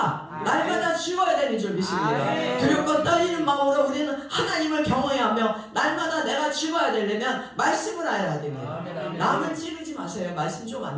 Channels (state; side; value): identical; both; correlation 1.00